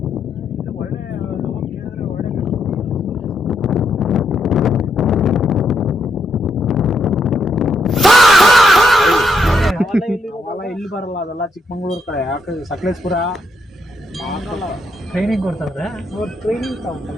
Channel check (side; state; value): both; normal; correlation 0.77